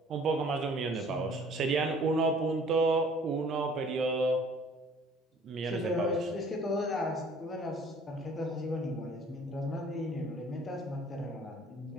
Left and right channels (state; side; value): normal; both; correlation 0.54